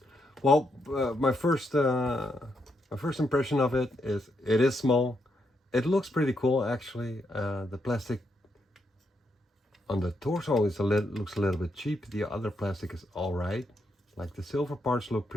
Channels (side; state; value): both; normal; correlation 0.79